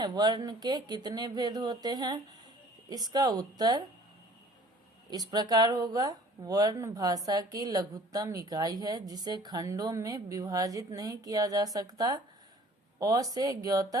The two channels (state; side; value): normal; both; correlation 0.51